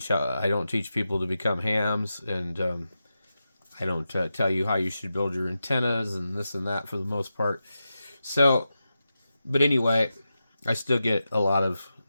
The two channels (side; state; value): both; inverted; correlation -0.90